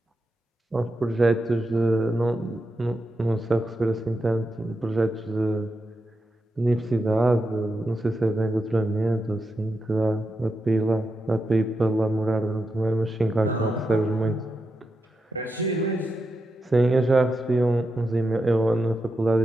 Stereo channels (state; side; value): normal; both; correlation 0.87